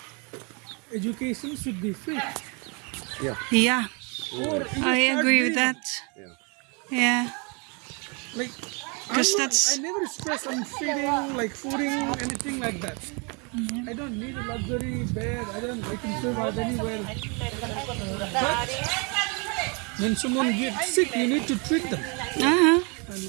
education should be free. Yeah. Yeah, Or you I start agree with doing- that. Yeah. Yeah. Like, 'Cause I that's- never stress on feeding, like fooding, anything like that. I don't need a luxury bed. I can survive anywhere. But when someone gets sick, you need to treat them, and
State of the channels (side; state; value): left; quieter; 32.9 dB